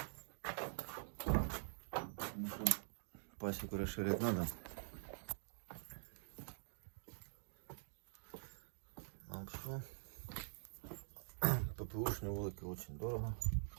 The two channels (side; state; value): left; silent; digital silence